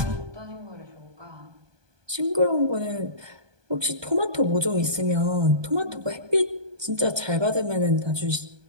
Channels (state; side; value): late; left; 1.2 ms